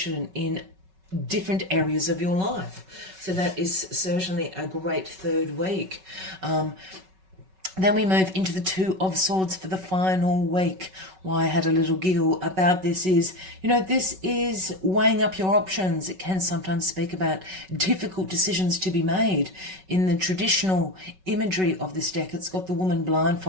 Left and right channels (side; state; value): left; late; 5.3 ms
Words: in different areas of your life. So that is certainly a great third week. Then we move into the Two of Swords for the final week. Why I had a little giggle about this is, this is weighing up your options. It can sometimes speak about difficult decisions to be made. In the traditional imagery of this deck, it's got the woman